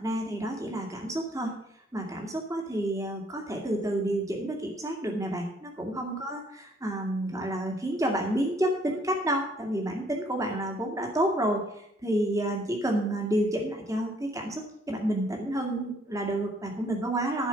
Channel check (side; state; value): both; normal; correlation 0.64